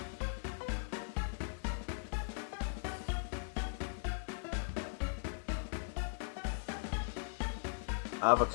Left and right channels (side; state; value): right; silent; digital silence